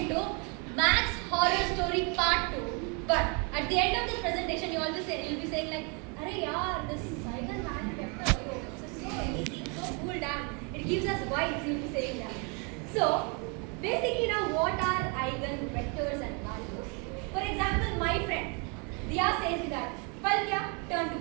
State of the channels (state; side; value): quieter; left; 34.0 dB